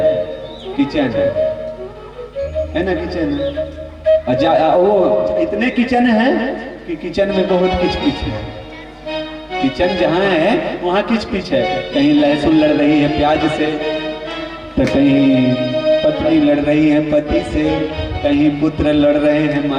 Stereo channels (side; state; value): both; identical; correlation 1.00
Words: किचन है ना? किचन है। वो इतने किचन है कि किचन में बहुत किचकिच है। किचन जहां है वहां किचकिच है। कहीं लहसुन लड़ रही है प्याज से, तो कहीं पत्नी लड़ रही है पति से, कहीं पुत्र लड़ रहे हैं